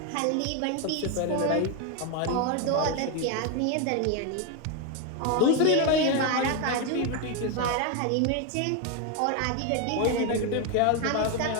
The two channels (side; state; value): both; different; correlation 0.01